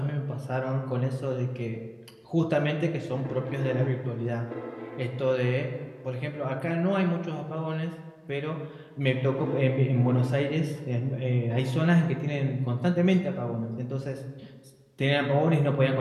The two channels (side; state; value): both; identical; correlation 1.00